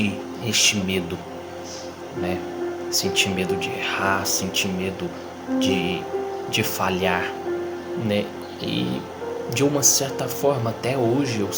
este medo, né? Senti medo de errar, senti medo de falhar, né? E de uma certa forma até hoje eu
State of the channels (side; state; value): both; identical; correlation 1.00